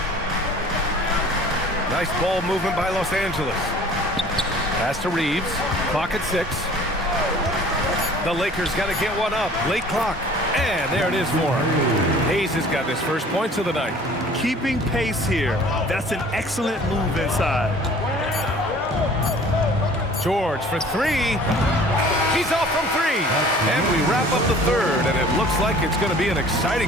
Nice ball movement by Los Angeles. Pass to Reeves. Clock at 6. The Lakers got to get one up. Late clock. And there it is for him. Hayes has got his first points of the night. Keeping pace here. That's an excellent move inside. George for three. He's off from three. And we wrap up the third, and it looks like it's going to be an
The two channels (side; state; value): both; normal; correlation 0.49